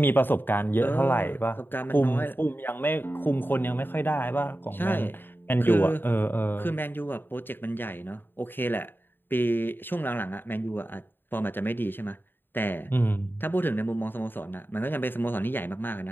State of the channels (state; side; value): late; right; 0.096 ms